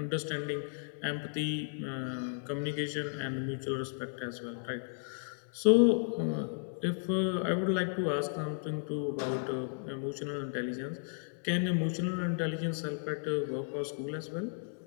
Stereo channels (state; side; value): silent; right; 55 dB below the other